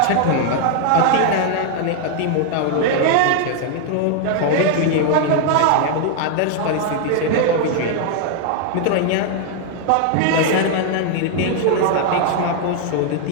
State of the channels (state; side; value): different; both; correlation 0.00